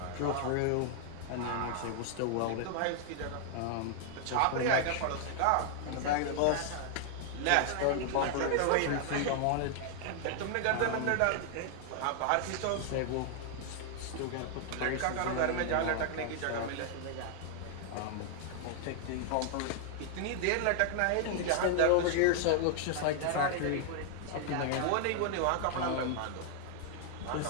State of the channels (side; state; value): both; different; correlation 0.00